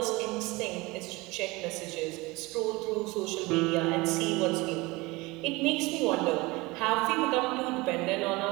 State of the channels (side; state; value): left; quieter; 22.8 dB